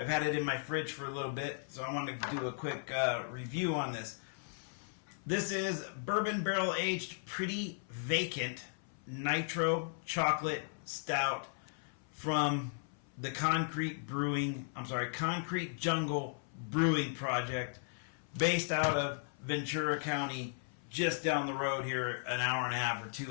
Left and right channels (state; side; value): silent; right; 54 dB below the other